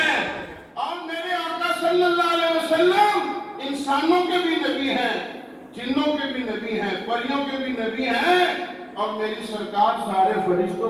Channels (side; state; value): both; identical; correlation 1.00